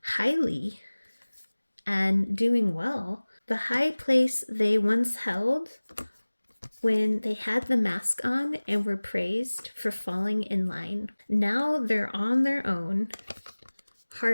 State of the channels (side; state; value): both; inverted; correlation -1.00